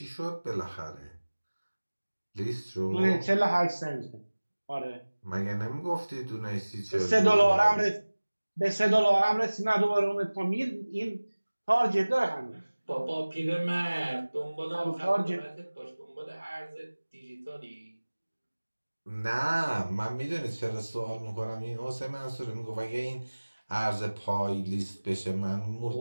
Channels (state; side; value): inverted; both; correlation -1.00